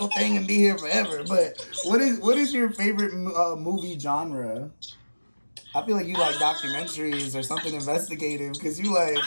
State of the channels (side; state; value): both; inverted; correlation -1.00